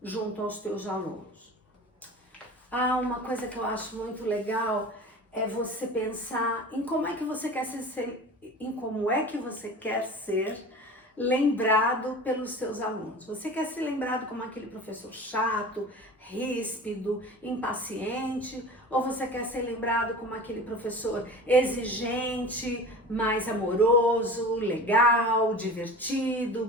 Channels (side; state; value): both; normal; correlation 0.36